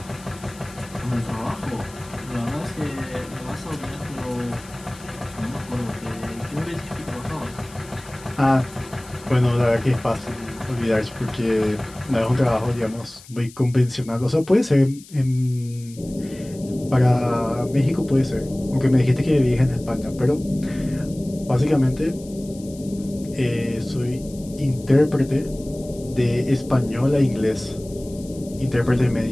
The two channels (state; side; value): noise; left; hiss, 21 dB below the sound